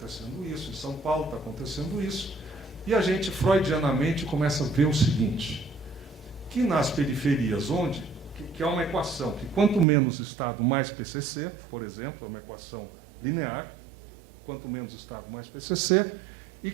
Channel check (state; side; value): drops out; left; at 9.9 s